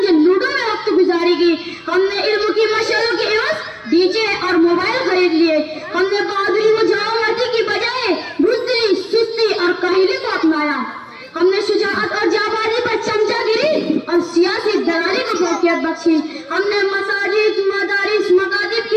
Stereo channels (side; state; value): both; identical; correlation 1.00